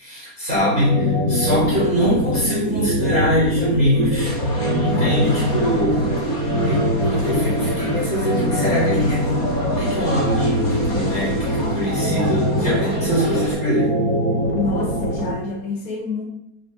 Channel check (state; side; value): late; right; 4.3 ms